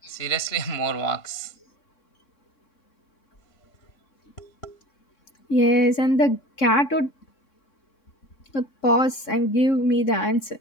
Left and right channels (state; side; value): late; right; 3.6 ms